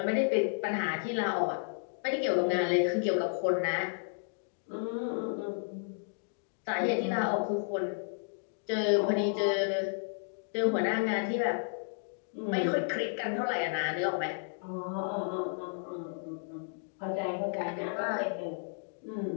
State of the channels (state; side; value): silent; right; digital silence